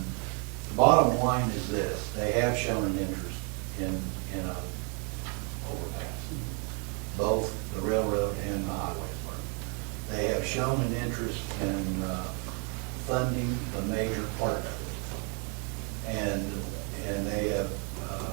bottom line is this: they have shown an interest in a overpass, both the railroad and the highway department. They have shown an interest in funding the major part of it. And they have,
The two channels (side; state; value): left; quieter; 37.6 dB